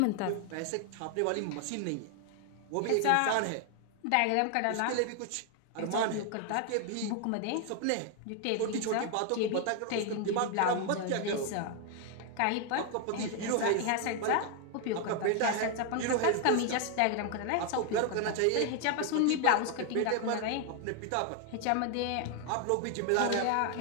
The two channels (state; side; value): different; both; correlation 0.00